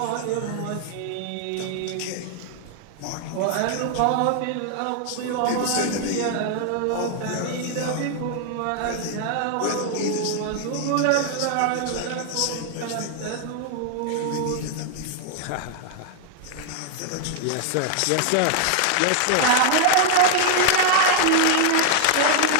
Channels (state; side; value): different; both; correlation 0.00